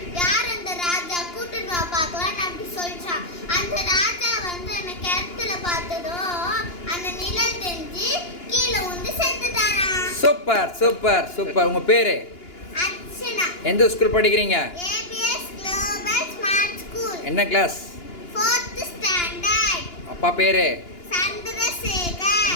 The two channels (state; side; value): late; right; 2.9 ms